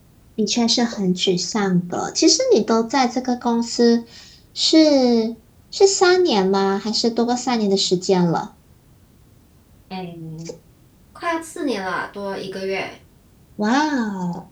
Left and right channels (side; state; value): both; identical; correlation 1.00